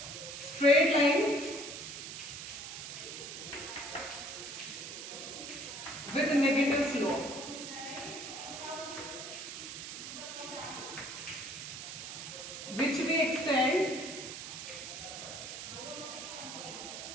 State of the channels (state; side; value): noise; right; hiss, 8 dB below the sound